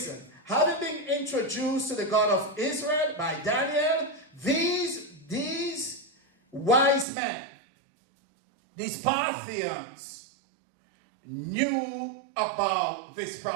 Having been introduced to the God of Israel by Daniel, these wise men these Parthians knew about this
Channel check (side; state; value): left; drops out; at 7.1 s